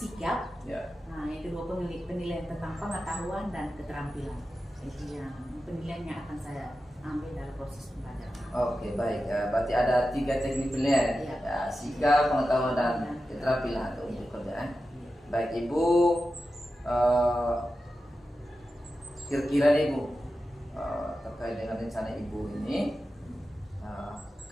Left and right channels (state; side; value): normal; both; correlation 0.92